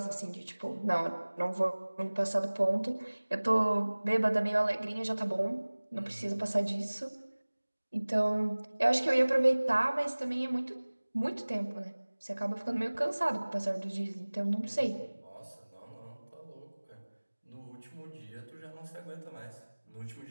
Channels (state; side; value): inverted; both; correlation -1.00